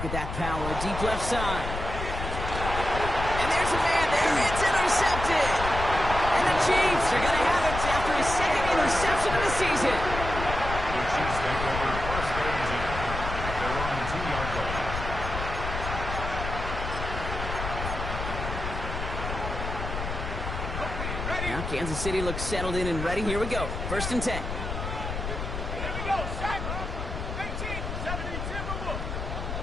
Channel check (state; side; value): noise; left; rumble, 5 dB below the sound